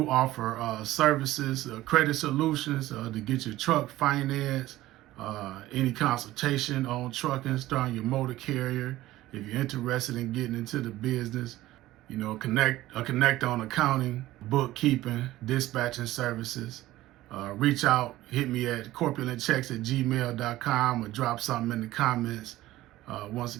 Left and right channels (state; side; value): quieter; left; 16.1 dB